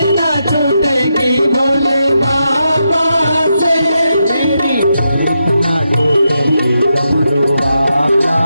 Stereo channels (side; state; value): both; inverted; correlation -0.85